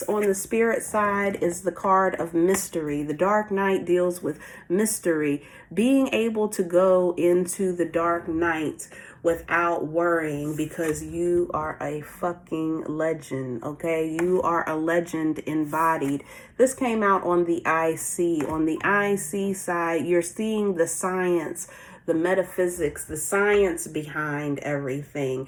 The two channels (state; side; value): identical; both; correlation 1.00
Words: on the spirit side is the card of mystery. The dark night deals with mystery. Being able to go into the dark night without worrying, because you are a fucking legend, okay? You are a legend embodied. This came out on the IC. On the IC side, you're seeing the science, the metaphysics, the science behind everything.